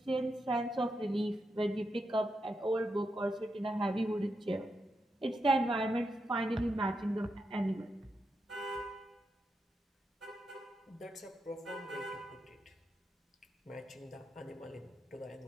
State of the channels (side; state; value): both; normal; correlation 0.85